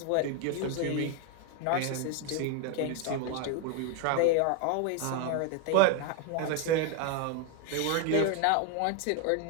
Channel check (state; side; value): different; both; correlation 0.01